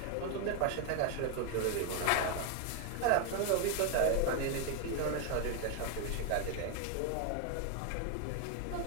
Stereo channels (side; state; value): both; different; correlation 0.01